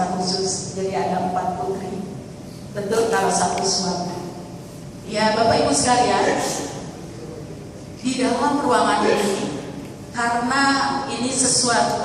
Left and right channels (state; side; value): identical; both; correlation 1.00